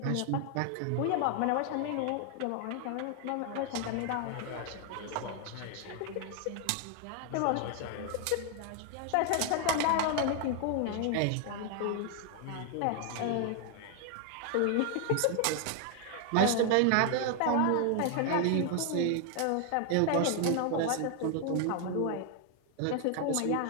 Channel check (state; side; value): different; both; correlation 0.00